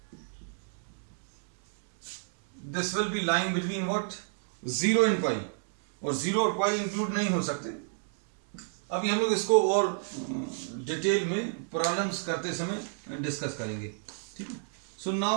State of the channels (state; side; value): silent; left; digital silence